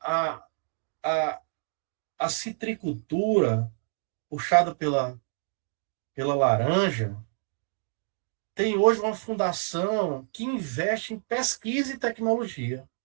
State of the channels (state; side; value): silent; left; 59 dB below the other